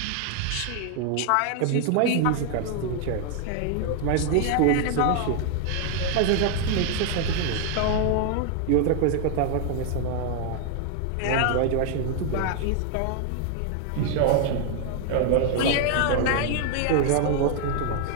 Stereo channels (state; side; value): different; both; correlation 0.00